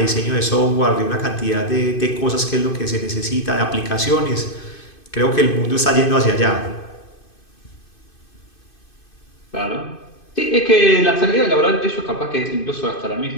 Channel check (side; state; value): right; late; 2.5 ms